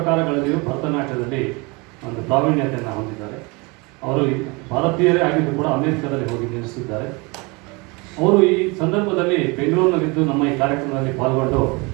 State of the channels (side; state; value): left; quieter; 27.5 dB